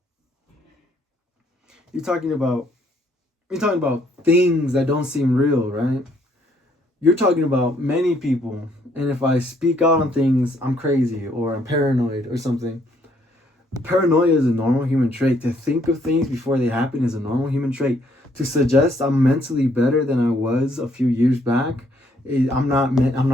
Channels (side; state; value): both; normal; correlation 0.68